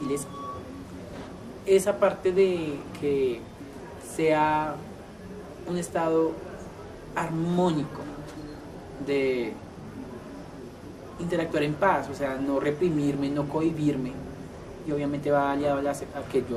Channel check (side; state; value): both; identical; correlation 1.00